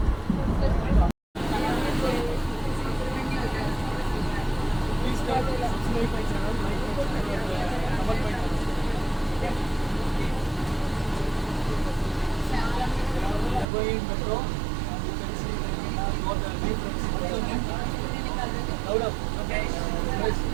Metro, you can see got the difference. Loud up. Okay.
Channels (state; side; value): drops out; left; at 13.7 s